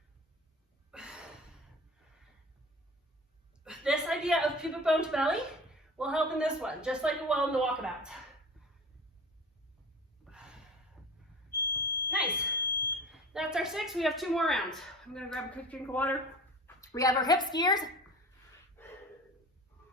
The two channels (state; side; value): normal; both; correlation 0.38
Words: This idea of pubic bone to belly will help in this one, just like it will in the walkabout. Nice. That's our 6. We have 2 more rounds. I'm gonna grab a quick drink of water. We have our hip skiers.